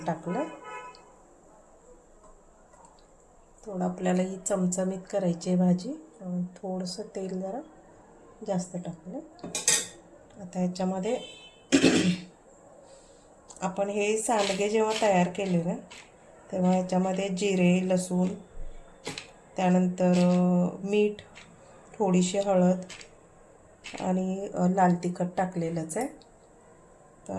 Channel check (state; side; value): identical; both; correlation 1.00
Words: टाकलं। थोडं आपल्याला ही चमचमीत करायची आहे भाजी, थोडंसं तेल जरा जास्त टाकलं। आता ह्याच्यामध्ये आपण हे सांडगे जेव्हा तयार केले ना, तेव्हा ह्याच्यामध्ये जिरे, लसूण, त्यानंतर मीठ, थोडीशी हळद आणि लाल तिखट टाकलेलंच आहे।